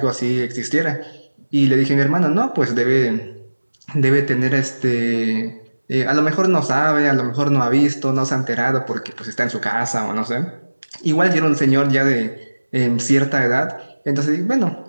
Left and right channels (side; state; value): both; inverted; correlation -1.00